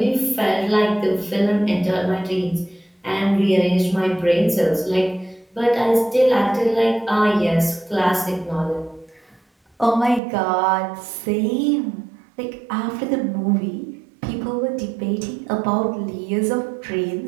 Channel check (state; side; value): drops out; left; at 10.2 s